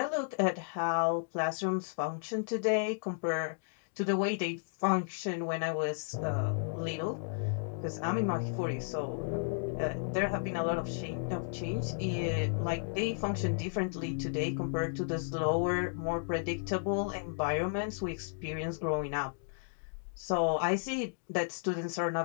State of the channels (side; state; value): right; silent; digital silence